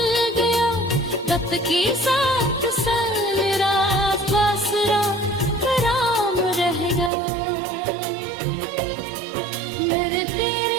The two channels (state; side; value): drops out; left; at 7.1 s